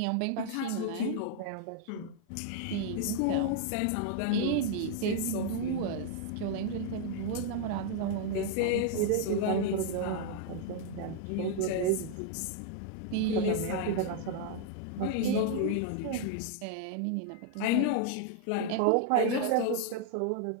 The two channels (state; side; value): different; both; correlation 0.00